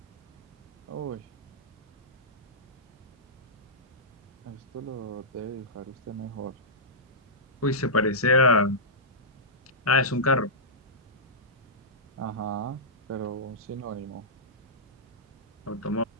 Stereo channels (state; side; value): normal; both; correlation -0.14